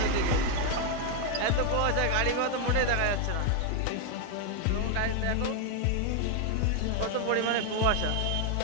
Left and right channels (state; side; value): different; both; correlation 0.01